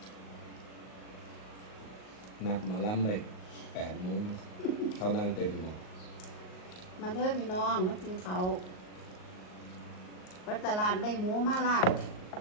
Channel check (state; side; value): late; right; 38 ms